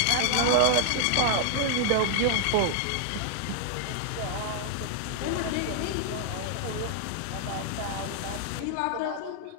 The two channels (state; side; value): different; both; correlation 0.00